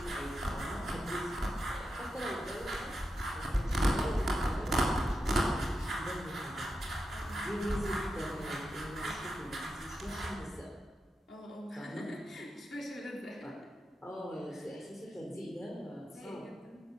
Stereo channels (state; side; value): normal; both; correlation 0.87